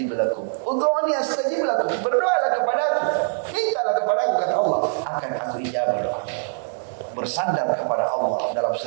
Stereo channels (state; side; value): silent; left; digital silence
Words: lakum. Ud'uni astajib lakum. Berdoalah kepadaku, mintalah kepadaku, kata Allah, akan aku ijabah doamu. Bersandar kepada Allah dalam